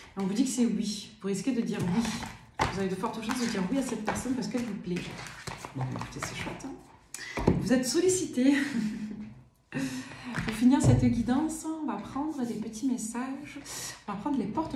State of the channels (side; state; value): both; identical; correlation 1.00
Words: On vous dit que c'est oui, vous risquez de dire oui. Vous avez de fortes chances de dire oui à cette personne parce qu'elle vous plaît. Bon, écoutez, c'est chouette. Hein. Vous êtes sollicité. Pour finir cette guidance, on va prendre des petits messages. On va prendre les portes